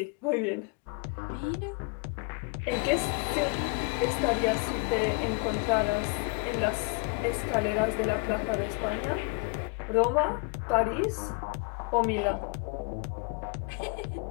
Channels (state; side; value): quieter; right; 30.8 dB